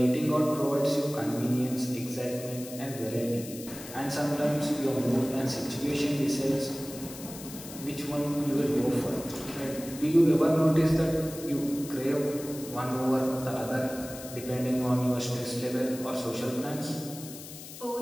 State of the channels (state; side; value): noise; left; hiss, 13 dB below the sound